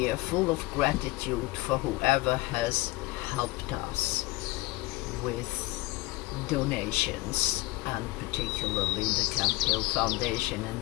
full of gratitude for whoever has helped us with donations, and particularly the Camphill Foundation,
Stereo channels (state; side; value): quieter; right; 20.4 dB